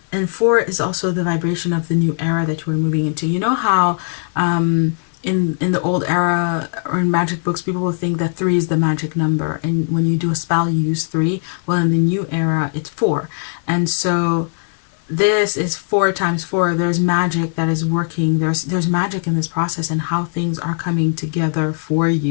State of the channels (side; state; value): right; silent; digital silence